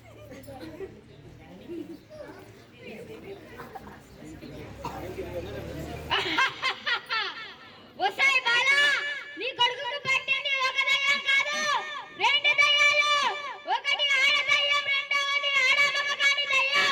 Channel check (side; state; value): both; identical; correlation 1.00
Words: వసాయి బాలా, నీ కొడుకుకు పట్టింది ఒక దయ్యం కాదు, రెండు దయ్యాలు. ఒకటి ఆడ దయ్యం, రెండవది ఆడ మగ కాని